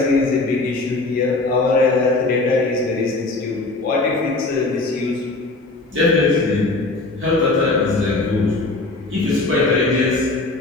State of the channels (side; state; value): right; quieter; 3.2 dB